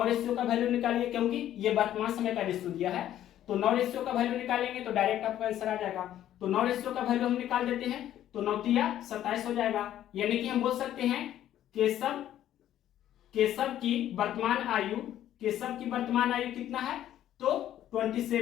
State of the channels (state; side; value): quieter; right; 11.9 dB